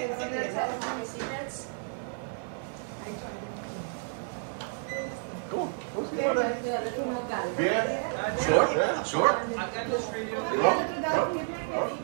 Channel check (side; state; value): left; silent; digital silence